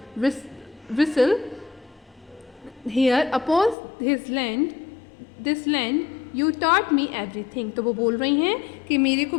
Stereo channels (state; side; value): drops out; right; at 3.8 s